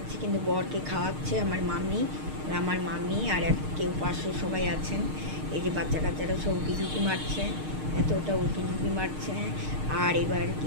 কিন্তু বরকে খাওয়াচ্ছে আমার মাম্মি আর কেউ পাশে সবাই আছেন। এই যে বাচ্চা কাচ্চারা সব উঁকি ঝুঁকি মারছে, এতটা উঁকি ঝুঁকি মারছে। আর এবার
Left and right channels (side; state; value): left; late; 6.5 ms